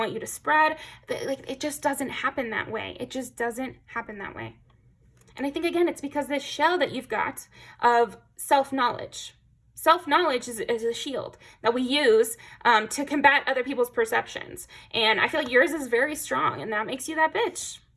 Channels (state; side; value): identical; both; correlation 1.00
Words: you to spread, like, it just doesn't happen that way. It just doesn't happen that way. And I think, again, it's because this shell that you've got of self-knowledge. Self-knowledge is a shield that we use to combat other people's perceptions. And I feel like yours is very strong, and that makes you that bitch.